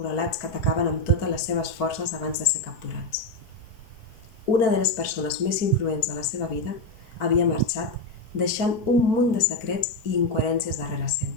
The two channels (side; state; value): right; late; 4.5 ms